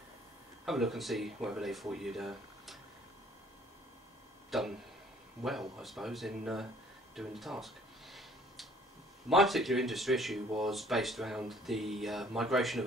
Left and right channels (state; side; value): normal; both; correlation 0.57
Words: have a look and see whether they thought you'd done well, I suppose, in doing the task. My particular industry issue was based around the migration of